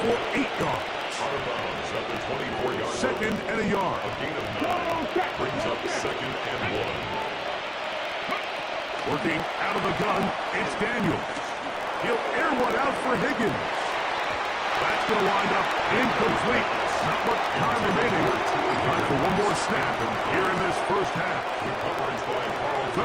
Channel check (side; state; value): both; identical; correlation 1.00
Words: for 8 yards. Out of bounds at the 24-yard line. 2nd and a yard. A gain of 9. Brings up 2nd and 1. Working out of the gun, it's Daniels. He'll air one out for Higgins. That's going to wind up incomplete. Not much time remaining. Time for one more snap here in this first half.